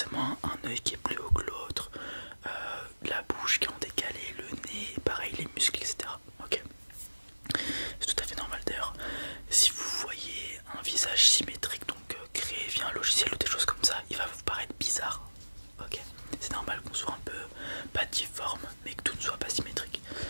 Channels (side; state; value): both; inverted; correlation -1.00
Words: un œil qui est plus haut que l'autre, la bouche qui est en décalé, le nez, pareil les muscles, etc. Ok, c'est tout à fait normal d'ailleurs. Si vous voyez un visage symétrique, donc créé via un logiciel ou des choses comme ça, il va vous paraître bizarre. Ok, c'est normal qu'on soit un peu pas difforme, mais que tout ne soit pas symétrique.